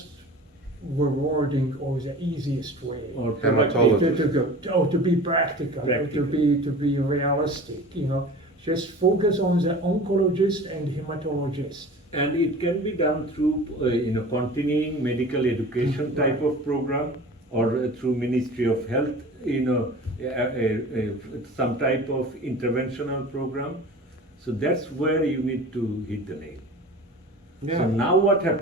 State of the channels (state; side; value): normal; both; correlation 0.38